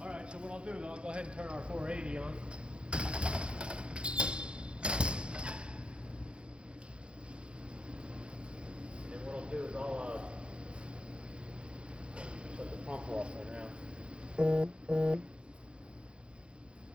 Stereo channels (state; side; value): late; left; 0.056 ms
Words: right. So what I'll do is I'll go ahead and turn our 480 on. And what I'll do is I'll shut the pump off right now.